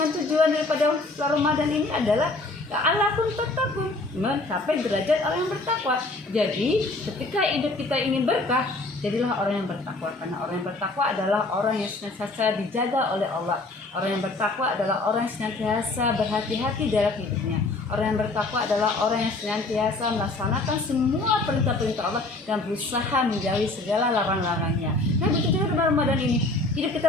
tujuan daripada bulan Ramadan ini adalah la'allakum tattaqun, mencapai derajat orang yang bertakwa. Jadi ketika hidup kita ingin berkah, jadilah orang yang bertakwa. Karena orang yang bertakwa adalah orang yang senantiasa dijaga oleh Allah. Orang yang bertakwa adalah orang yang senantiasa berhati-hati dalam hidupnya. Orang yang bertakwa adalah orang yang senantiasa melaksanakan semua perintah-perintah Allah dan berusaha menjauhi segala larang-larangnya. Nah begitu juga di Ramadan ini, hidup kita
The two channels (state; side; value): quieter; right; 3.1 dB